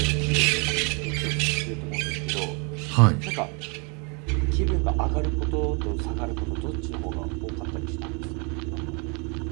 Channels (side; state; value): left; quieter; 34.0 dB